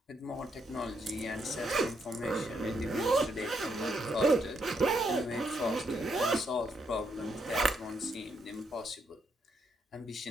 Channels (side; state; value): both; normal; correlation 0.77